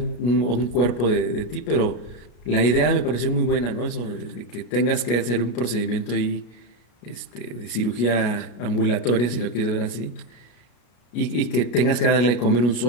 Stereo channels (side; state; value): right; late; 33 ms